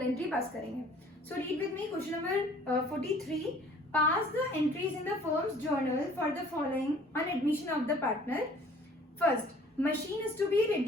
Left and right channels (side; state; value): both; normal; correlation 0.53